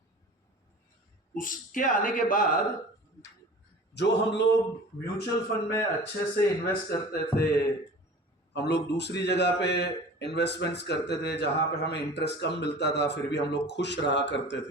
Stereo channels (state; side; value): normal; both; correlation 0.40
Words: उसके आने के बाद जो हम लोग म्यूचुअल फंड में अच्छे से इन्वेस्ट करते थे, हम लोग दूसरी जगह पे इन्वेस्टमेंट्स करते थे जहां पे हमें इंटरेस्ट कम मिलता था, फिर भी हम लोग खुश रहा करते